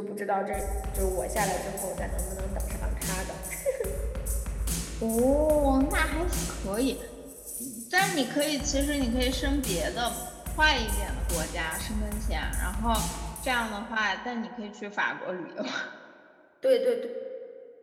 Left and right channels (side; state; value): both; identical; correlation 1.00